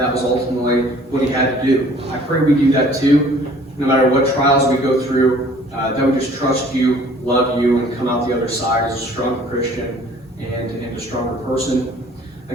was ultimately what He had to do. I pray we do that too, no matter what trials we go through, that we just trust you, love you, and come out the other side as a stronger Christian and a stronger person.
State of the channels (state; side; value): normal; both; correlation 0.53